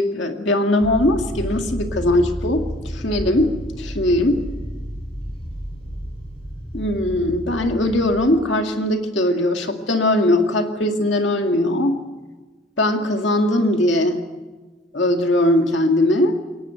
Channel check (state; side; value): normal; both; correlation 0.51